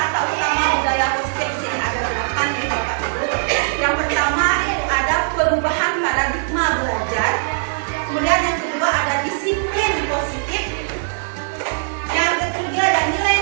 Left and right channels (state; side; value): silent; left; 62 dB below the other